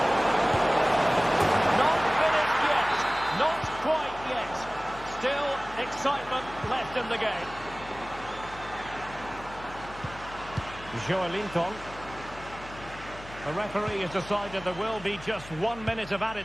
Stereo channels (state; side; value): noise; left; hum, 17 dB below the sound